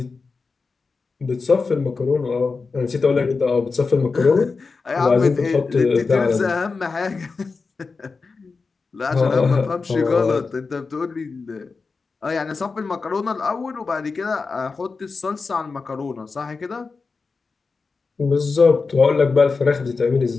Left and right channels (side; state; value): right; quieter; 4.4 dB